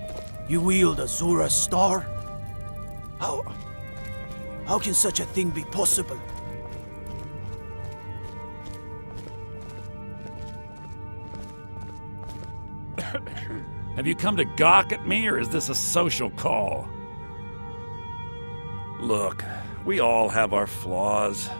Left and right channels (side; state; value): both; inverted; correlation -1.00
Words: You wield Azura's star? How can such a thing be possible? Have you come to gawk at me, or is this a social call? Look, we all have our flaws.